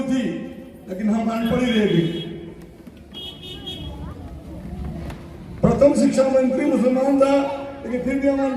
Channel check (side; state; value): both; identical; correlation 1.00